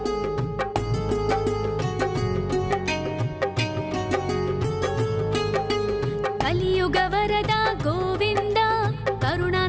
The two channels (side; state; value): both; identical; correlation 1.00